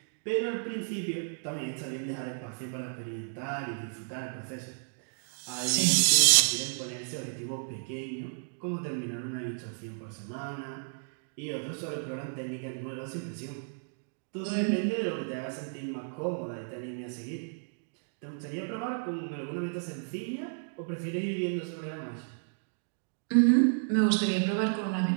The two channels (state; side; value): silent; left; digital silence